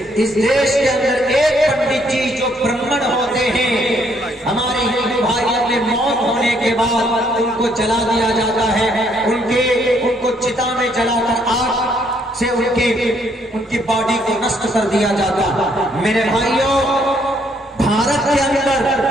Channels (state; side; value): normal; both; correlation 0.69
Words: اس دیش کے اندر ایک پنڈت جی جو برہمن ہوتے ہیں، ہمارے ہندو بھائیوں میں موت ہونے کے بعد ان کو جلا دیا جاتا ہے، ان کو چتا میں جلا کر آگ سے ان کی باڈی کو نشٹ کر دیا جاتا. میرے بھائیوں، بھارت کے اندر